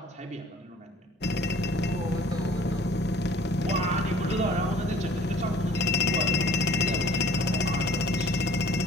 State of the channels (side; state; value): both; normal; correlation 0.52